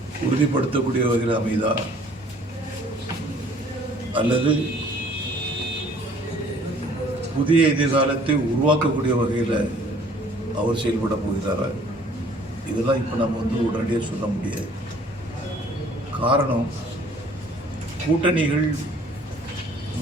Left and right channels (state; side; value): normal; both; correlation 0.56